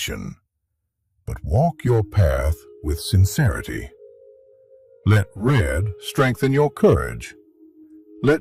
but walk your path with sincerity. Let red strengthen your courage.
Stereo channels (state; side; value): identical; both; correlation 1.00